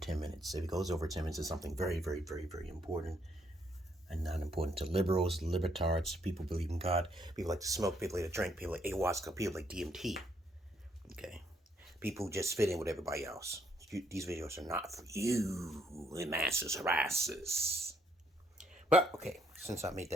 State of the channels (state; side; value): normal; both; correlation 0.71